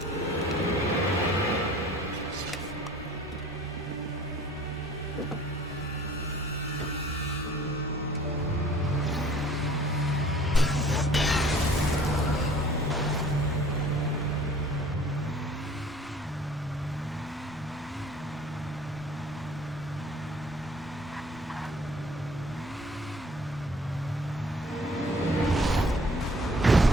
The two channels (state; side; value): normal; both; correlation 0.51